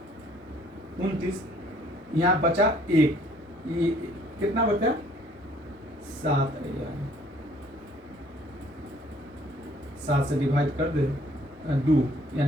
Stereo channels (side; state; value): both; normal; correlation 0.60